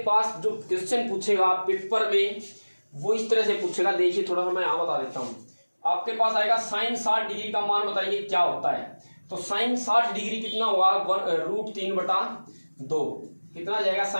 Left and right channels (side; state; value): both; inverted; correlation -1.00